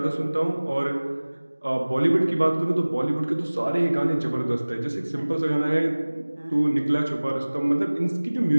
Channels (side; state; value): both; inverted; correlation -1.00